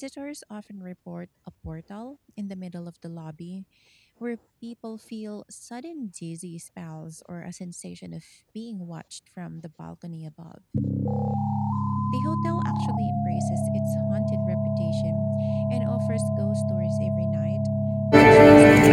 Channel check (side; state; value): both; identical; correlation 1.00